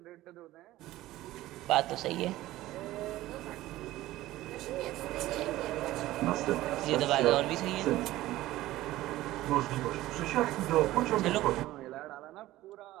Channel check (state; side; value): quieter; left; 16.1 dB